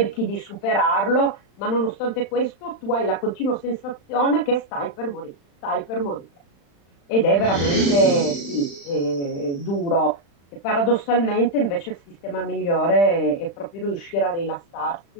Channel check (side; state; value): right; late; 35 ms